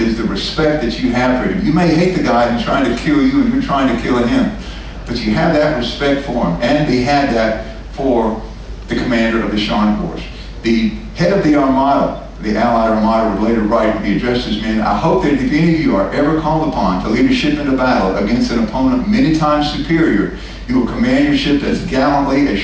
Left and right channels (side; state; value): both; identical; correlation 1.00